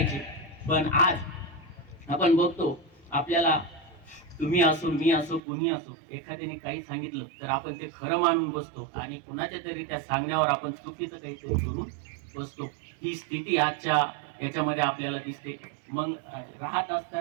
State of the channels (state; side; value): drops out; left; at 5.4 s